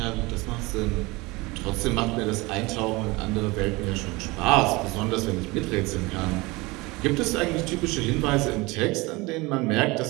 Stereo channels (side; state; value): left; quieter; 23.4 dB